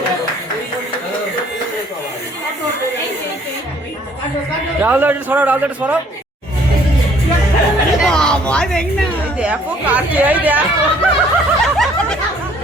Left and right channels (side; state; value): both; normal; correlation 0.60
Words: রাহুল একটু সরাও, রাহুল একটু সরাও। দেখো কাটছে, এই দেখো